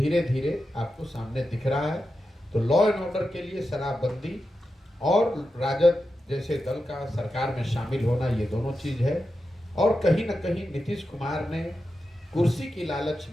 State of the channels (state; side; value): normal; both; correlation 0.90